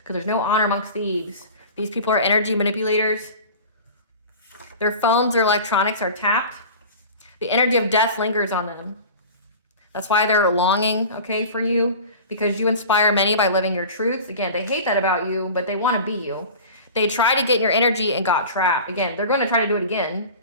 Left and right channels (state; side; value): inverted; both; correlation -0.37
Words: there's no honor amongst thieves. These people are energy manipulators. Their phones, their electronics are tapped. The energy of death lingers on them. That's why they're longing, okay, for you, because you inspire many by living your truths. Again, they hate that about you, but they want to be you. They tried to get in your energy and got trapped. Again, they're going to try to do it again